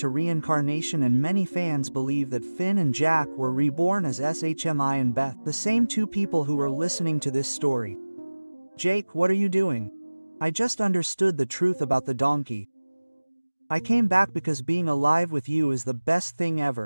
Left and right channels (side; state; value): both; inverted; correlation -1.00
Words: reincarnation, and many fans believe that Finn and Jack were reborn as SHMI and Beth, the same two people who were listening to this story. Jake, what are you doing? I just understood the truth about the donkey. I came back because being alive with you is the best thing